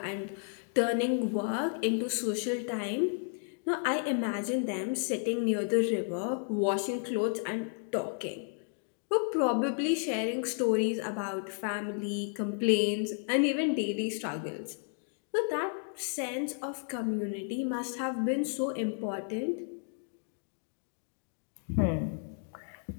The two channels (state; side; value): silent; right; 56 dB below the other